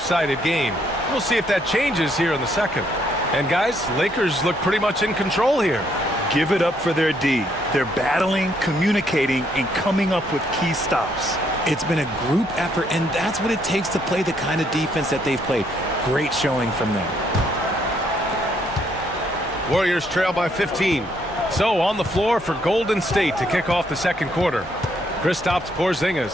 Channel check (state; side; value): normal; both; correlation 0.71